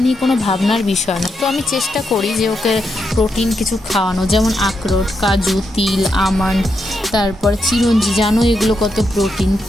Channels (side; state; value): both; normal; correlation 0.82